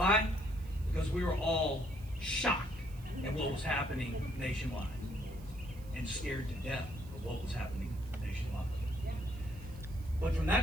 Because we were all shocked at what was happening nationwide and scared to death of what was happening nationwide. But from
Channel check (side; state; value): right; noise; hiss, 24 dB below the sound